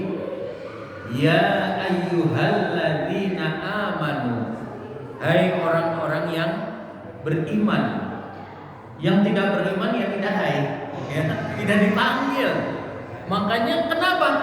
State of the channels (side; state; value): both; identical; correlation 1.00